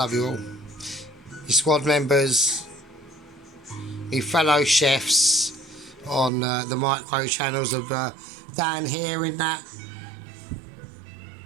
you all. Your squad members, your fellow chefs on the micro channels of Dan here in that,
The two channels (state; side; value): drops out; left; at 6.3 s